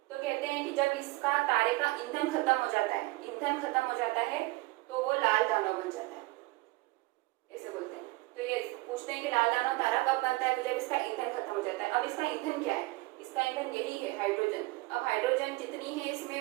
तो कहते हैं कि जब इसका तारे का ईंधन खत्म हो जाता है तो वो लाल दानव बन जाता है, ऐसे बोलते हैं। तो ये पूछते हैं कि लाल दानव तारा कब बनता है, तो जब इसका ईंधन खत्म हो जाता है। अब इसका ईंधन क्या है, इसका ईंधन यही है, हाइड्रोजन। अब हाइड्रोजन जितनी है इसमें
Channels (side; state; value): left; quieter; 22.3 dB